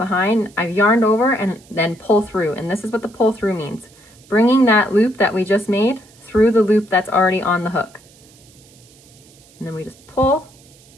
behind, I've yarned over and then pull through. And this is what the pull through means. Bringing that loop that we just made through the loop that's already on the hook. And then we just pull,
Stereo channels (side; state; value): right; noise; hiss, 27 dB below the sound